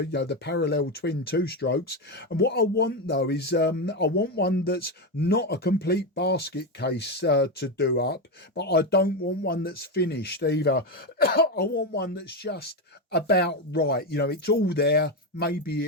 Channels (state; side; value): normal; both; correlation 0.11